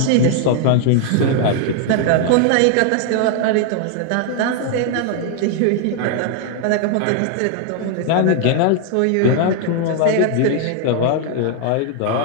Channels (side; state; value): both; different; correlation 0.00